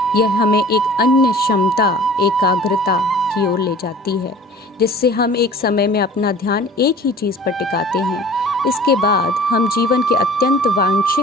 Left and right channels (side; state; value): both; normal; correlation 0.45